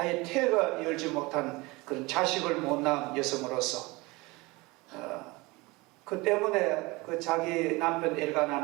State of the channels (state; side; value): quieter; left; 23.6 dB